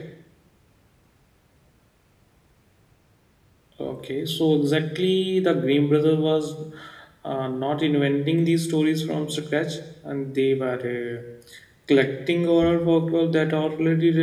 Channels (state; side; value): identical; both; correlation 1.00